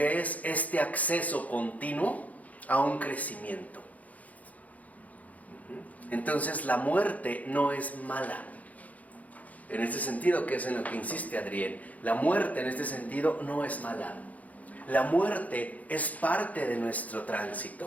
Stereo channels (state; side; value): late; right; 0.073 ms